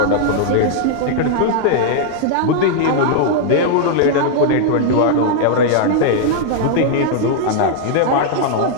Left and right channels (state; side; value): different; both; correlation -0.01